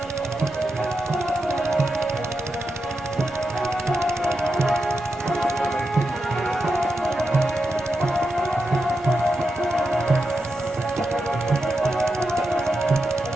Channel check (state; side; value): normal; both; correlation 0.87